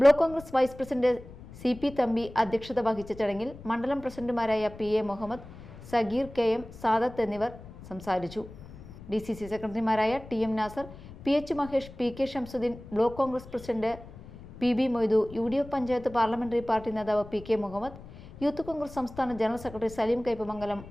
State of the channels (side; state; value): left; noise; rumble, 17 dB below the sound